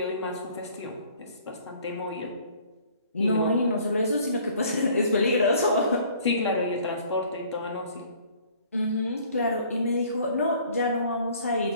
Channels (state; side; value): inverted; both; correlation -0.55